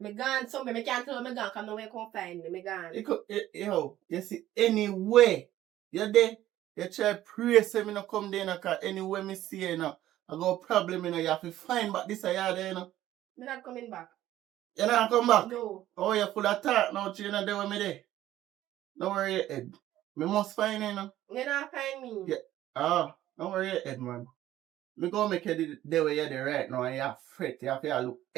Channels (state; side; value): quieter; left; 13.7 dB